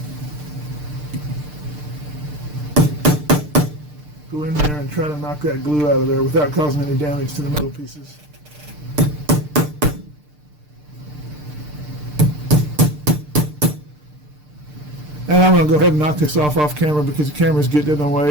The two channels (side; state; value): left; late; 6.7 ms